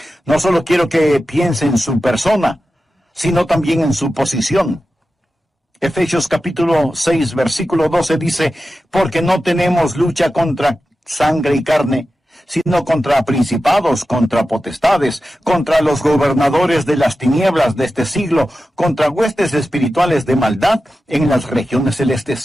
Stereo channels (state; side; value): normal; both; correlation 0.93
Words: No solo quiero que piense en su persona, sino también en su posición. Efesios capítulo 6, versículo 12 dice, porque no tenemos lucha contra sangre y carne, sino contra principados, contra potestades, contra los gobernadores de las tinieblas de este siglo, contra huestes espirituales de maldad en las regiones